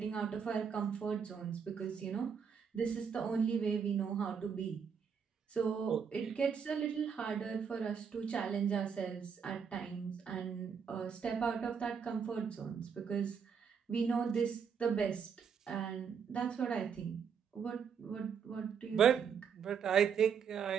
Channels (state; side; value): quieter; left; 6.8 dB